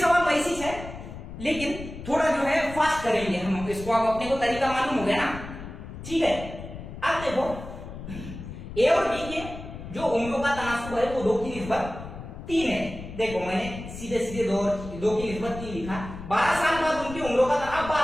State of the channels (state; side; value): noise; left; rumble, 11 dB below the sound